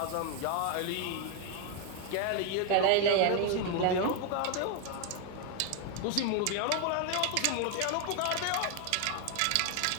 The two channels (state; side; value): different; both; correlation 0.00